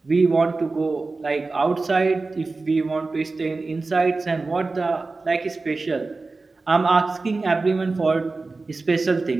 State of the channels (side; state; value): left; quieter; 3.7 dB